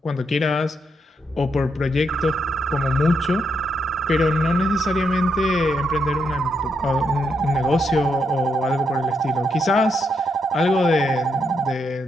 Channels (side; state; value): both; normal; correlation 0.79